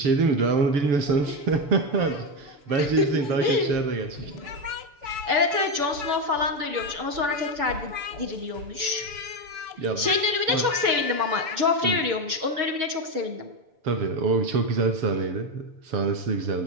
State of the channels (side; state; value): left; late; 6.9 ms